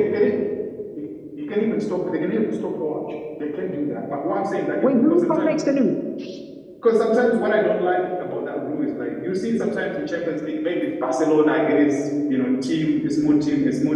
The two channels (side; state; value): both; identical; correlation 1.00